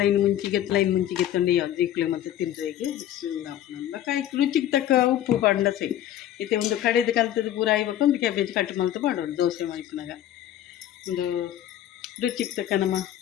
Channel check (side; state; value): right; quieter; 11.9 dB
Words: ಮುಂಚಿಗೆ ಮುಂಚಿಗೆ ತಂದು ಯಾವ್ದು ಜೀಕ್ಲೆ ಮತ್ತು ತಿಂದ್ರೆಗೆ ಬಕ್ಕ ರುಚಿಗೆ ತಕ್ಕ ಉಪ್ಪು ಪಂಡ ಸೈ ಇತ್ತೆ ಒಂದು ಕಡೆದು ಕಲ್ತದ್ದು ಪೂರ ಆಯ್ಬೇಕು ಒಂದು ಕ್ಯಾಬೇಜ್ ಕಟ್ ಮಲ್ತು ಮಾಡೋದು ದೋಸೆ ಮಲ್ಪನಾಗ ಒಂದು ರುಚಿಗೆ ತಕ್ಕ ನಮ್ಮ